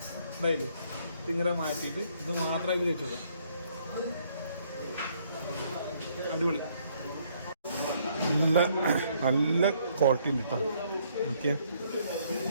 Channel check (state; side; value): inverted; both; correlation -0.67